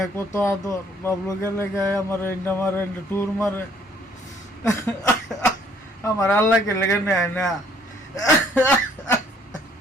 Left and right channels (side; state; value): both; normal; correlation 0.62